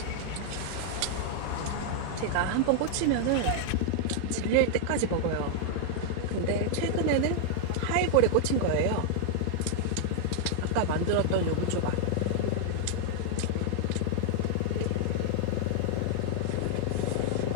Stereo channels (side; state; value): both; different; correlation -0.01